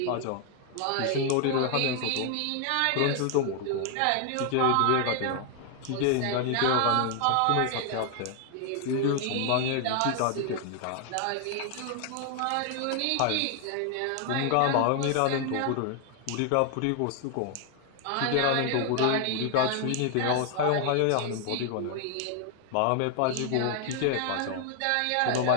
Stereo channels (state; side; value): different; both; correlation 0.00